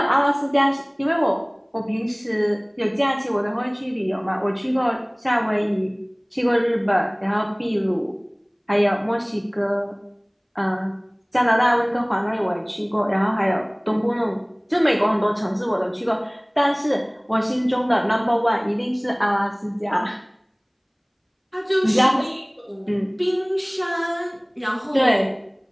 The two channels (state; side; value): identical; both; correlation 1.00